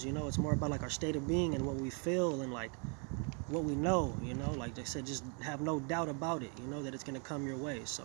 It's more about like our state of being and what we feel and like what we know, like I said, just have no doubt about it, that it's gonna come your way. So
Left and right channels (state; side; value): quieter; left; 37.4 dB